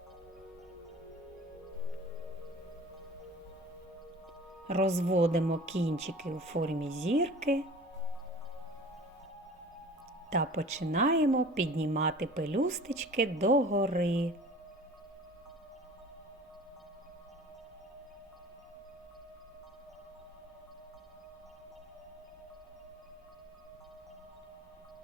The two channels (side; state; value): both; normal; correlation 0.43